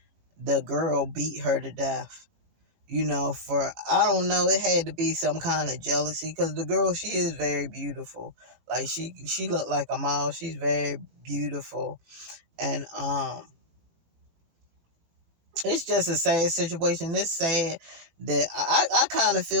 the girl beat her to death. For I don't know, it had to be some kind of jealousy because the girl, she is very beautiful. Like she looked like a model. She's very beautiful, and it's just a sad situation. It's sad that I kind of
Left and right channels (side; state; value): left; late; 18 ms